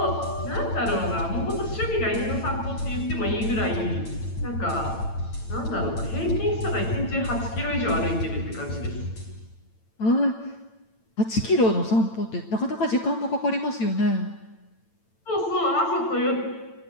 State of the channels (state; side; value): late; right; 9.0 ms